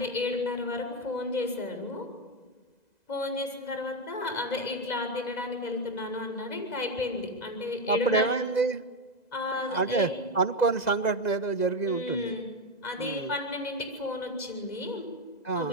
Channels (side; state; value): right; late; 2.0 ms